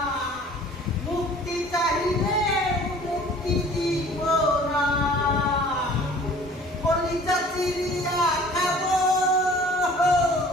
মুক্তি চাইলে মুক্তি দিব না। কলিজা চিরিয়া খাবো,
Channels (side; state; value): both; normal; correlation 0.49